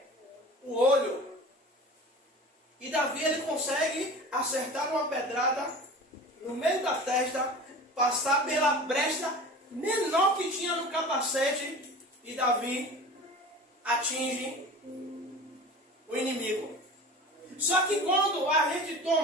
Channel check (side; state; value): both; normal; correlation 0.37